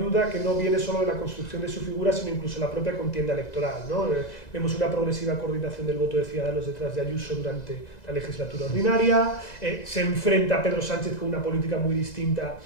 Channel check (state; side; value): late; right; 2.0 ms